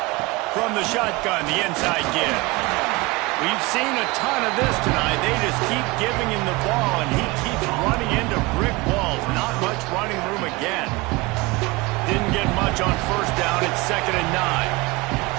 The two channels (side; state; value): left; quieter; 23.5 dB